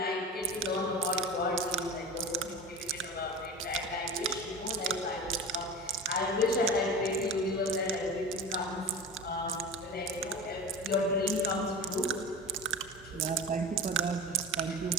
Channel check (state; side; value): normal; both; correlation 0.31